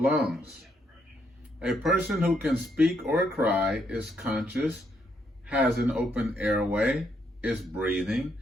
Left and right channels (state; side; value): normal; both; correlation 0.75